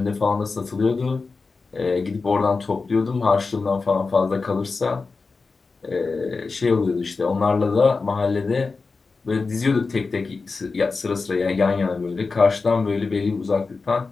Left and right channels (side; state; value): right; quieter; 4.2 dB